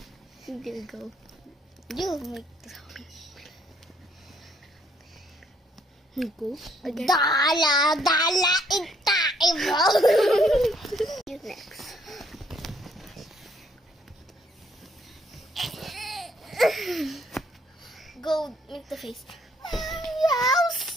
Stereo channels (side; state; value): both; normal; correlation 0.67